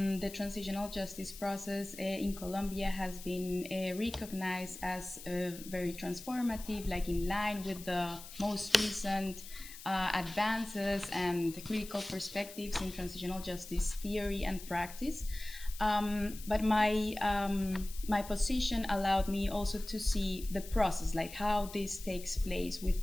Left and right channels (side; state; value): left; noise; hiss, 14 dB below the sound